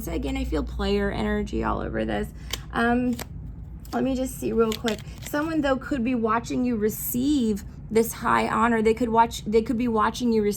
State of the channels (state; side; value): identical; both; correlation 1.00